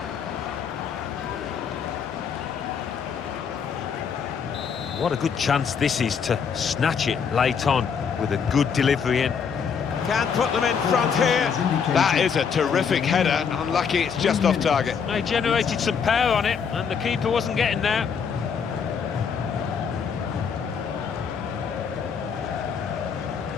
What a good chance this is to snatch it late on with a good delivery in. Can put them in front here. That is a terrific header. Unlucky it's just off target. They generated some power on it and the keeper wasn't getting there.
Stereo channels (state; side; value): quieter; right; 6.6 dB